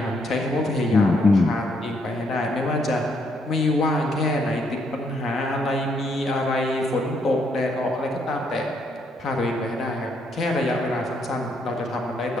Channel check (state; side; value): normal; both; correlation 0.73